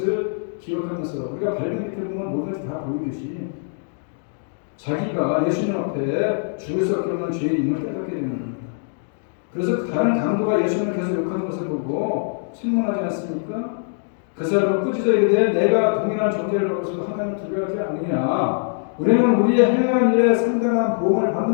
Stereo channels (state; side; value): silent; right; digital silence